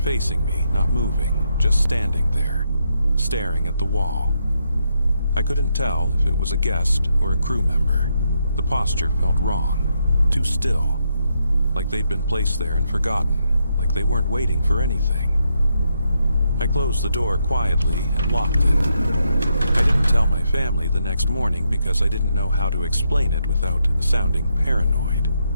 facing me, not moving, just standing there, staring at the wall. I couldn't tell if it was a guest or a crew member. The posture felt wrong, too still, like they'd been placed there and forgotten, like they weren't waiting for anything. I closed the door quietly and locked it. I didn't tell my family the next morning because I didn't know how to explain it without sounding paranoid.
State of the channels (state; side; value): inverted; both; correlation -0.80